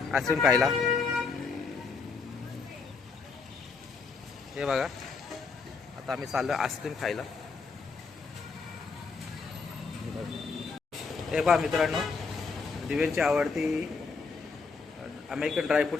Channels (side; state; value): right; quieter; 4.7 dB